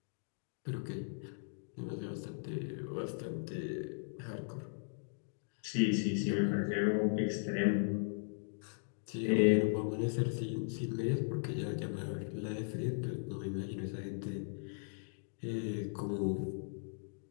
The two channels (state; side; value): silent; right; digital silence